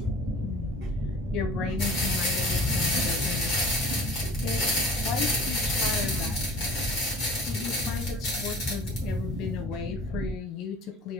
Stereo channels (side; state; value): both; normal; correlation 0.45